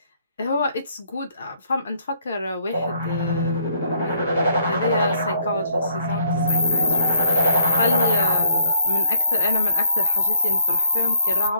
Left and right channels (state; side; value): inverted; both; correlation -0.66